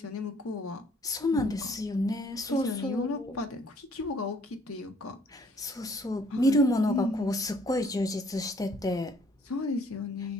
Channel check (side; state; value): both; normal; correlation 0.61